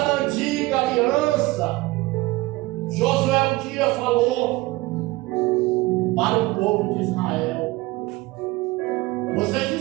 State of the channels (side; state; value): left; quieter; 20.6 dB